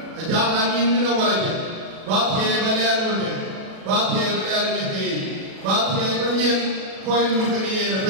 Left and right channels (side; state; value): left; late; 37 ms